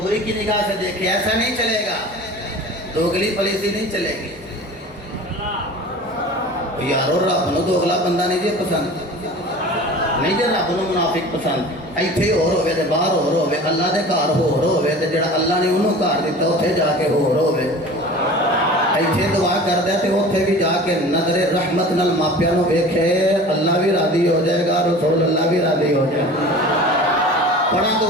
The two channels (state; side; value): normal; both; correlation 0.39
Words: بری کی نگاہ سے دیکھے. ایسا نہیں چلے گا, دوگلی پلیسی نہیں چلے گی. یارو رب نو دوگلا بندہ نہیں جی پسند, نہیں جی رب نو منافق پسند. ایتھے ہور ہوے تے باہر ہور ہوے, اللہ دے گھر ہور ہوے تے جڑا اللہ نے انہوں گھر دیتا اوتھے جا کے ہور ہوے. ایتھے دعا کردا تے اوتھے بھی جا کے نظر رحمت نال ماپیاں نو ویکھے, اللہ بھی راضی ہو جائے گا, رسول اللہ بھی راضی ہو جائے گا. پڑھا